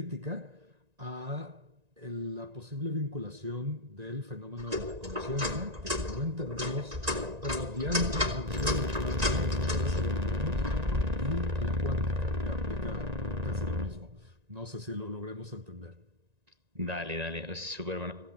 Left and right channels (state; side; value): late; left; 1.9 ms